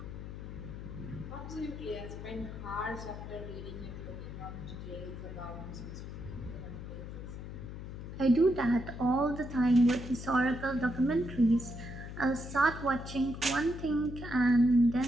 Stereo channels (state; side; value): noise; left; hum, 9 dB below the sound